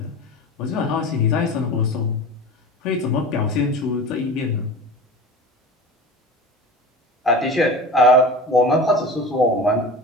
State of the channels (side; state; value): both; normal; correlation 0.33